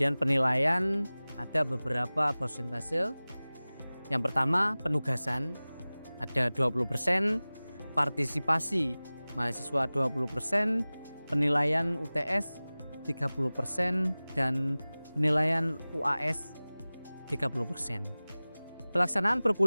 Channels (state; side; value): inverted; both; correlation -0.99